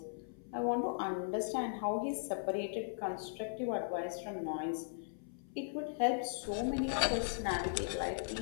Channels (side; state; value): right; silent; 52 dB below the other